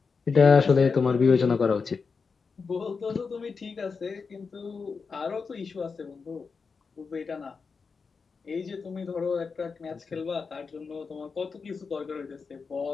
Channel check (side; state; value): right; quieter; 5.1 dB